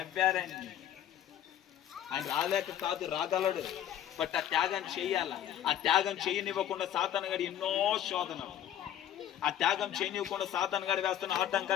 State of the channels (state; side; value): quieter; right; 11.0 dB